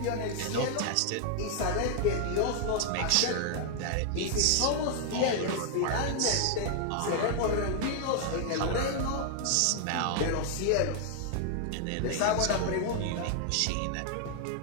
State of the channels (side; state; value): both; different; correlation 0.00